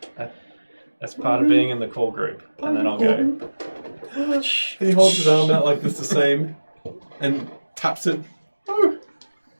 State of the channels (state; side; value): inverted; both; correlation -1.00